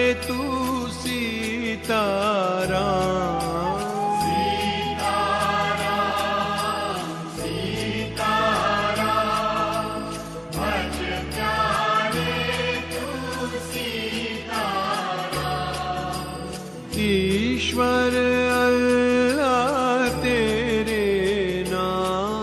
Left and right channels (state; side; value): identical; both; correlation 1.00